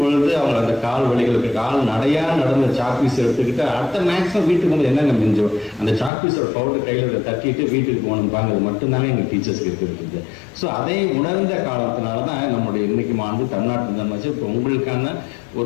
அவங்க அந்த கால் வலிகளுக்கு கால் நடையா நடந்த சாக்பீஸ் எடுத்துக்கிட்டு அடுத்த மேக்ஸிமம் வீட்டுக்கு வந்து என்னங்க மிஞ்சோம் அந்த சாக்பீஸோட பவுடர் கையில் தட்டிட்டு வீட்டுக்கு போகணும்பாங்க. அது மட்டும்தானே எங்கள் டீச்சர்ஸ்க்கு இருக்கிறது. ஸோ அதை உணர்ந்த காலத்தினால தான் நம்முடைய இன்னைக்கு ஆண்டு தமிழ்நாட்டு இருந்தாச்சு இப்போ உங்களுக்கான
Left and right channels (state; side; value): drops out; right; at 6.1 s